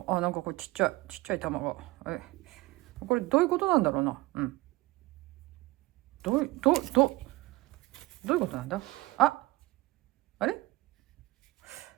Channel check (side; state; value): left; quieter; 20.4 dB